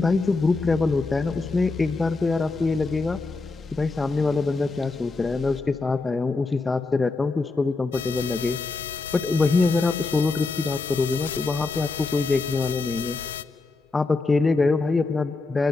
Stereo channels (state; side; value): quieter; right; 3.7 dB